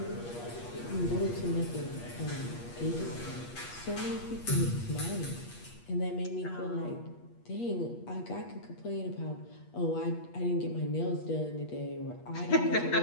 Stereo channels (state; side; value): late; right; 8.4 ms